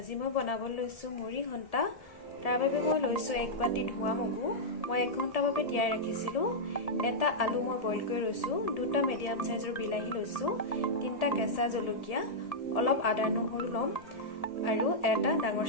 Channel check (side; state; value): right; late; 1.8 ms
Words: মই বনাবলৈ লৈছোঁ মুড়ি ঘণ্টা। তাৰ বাবে মই লৈছোঁ 1 বাটি ধোৱা মগু। মই 1 ঘণ্টা বাবে তিয়াই ৰাখিছিলোঁ। এটা আলু মই বইল কৰি লৈছোঁ। 2টা মিডিয়াম সাইজৰ বিলাহী লৈছোঁ। 3টা কেঁচা জলকীয়া, অলপ আদা নহৰু ল'ম আৰু এটা ডাঙৰ